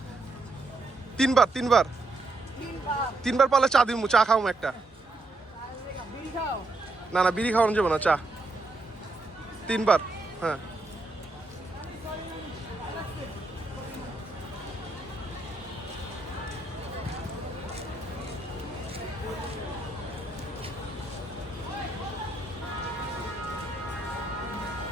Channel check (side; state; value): left; quieter; 3.0 dB